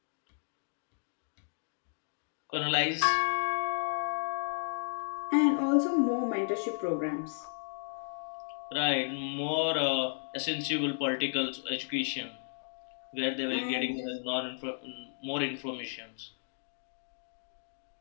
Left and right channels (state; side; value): silent; right; digital silence